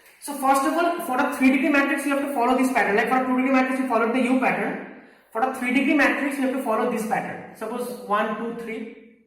So first of all, for a 3 degree matrix you have to follow this pattern. Like for a 2 degree matrix you follow the U pattern. For a 3 degree matrix you have to follow this pattern. Suppose 1, 2, 3,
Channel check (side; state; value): both; identical; correlation 1.00